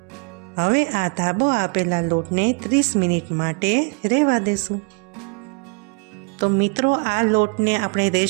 હવે આ ધાબો આપેલા લોટને 30 મિનિટ માટે રહેવા દેશું. તો મિત્રો, આ લોટને આપણે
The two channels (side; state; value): left; quieter; 34.3 dB